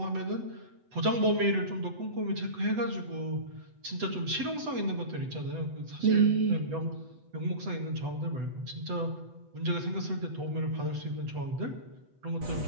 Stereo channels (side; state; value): left; late; 8.0 ms